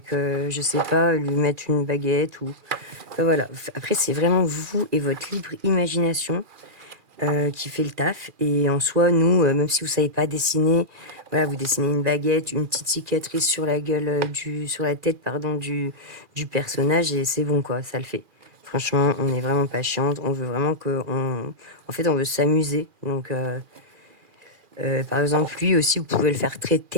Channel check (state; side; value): late; left; 2.4 ms